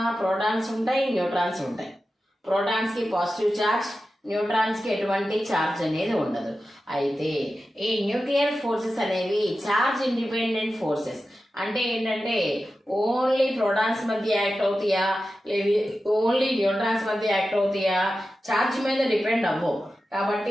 ప్రోటాన్స్ ఉంటాయి, న్యూట్రాన్స్ ఉంటాయి. ప్రోటాన్స్ కి పాజిటివ్ ఛార్జ్, న్యూట్రాన్స్ కి ఎటువంటి ఛార్జ్ అనేది ఉండదు. అయితే ఈ న్యూక్లియర్ ఫోర్సెస్ అనేవి ఛార్జ్ ఇండిపెండెంట్ ఫోర్సెస్. అంటే ఏంటంటే ఓన్లీ ప్రోటాన్స్ మధ్య యాక్ట్ అవుతాయా, లేదు ఓన్లీ న్యూట్రాన్స్ మధ్య యాక్ట్ అవుతాయా, ఛార్జ్ మీద డిపెండ్ అవ్వవు.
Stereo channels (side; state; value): both; normal; correlation 0.92